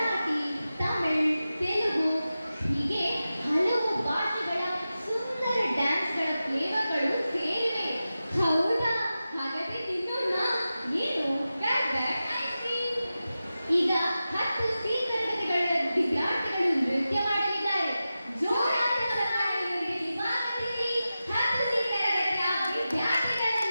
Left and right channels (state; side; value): inverted; both; correlation -0.93